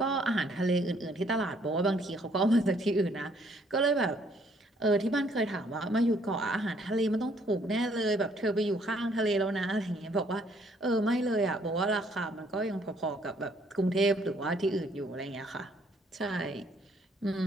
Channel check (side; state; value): both; normal; correlation 0.65